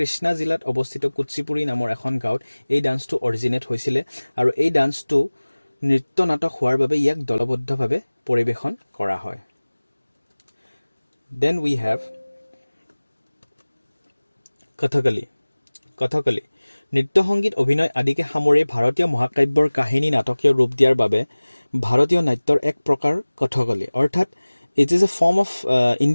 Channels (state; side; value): inverted; both; correlation -1.00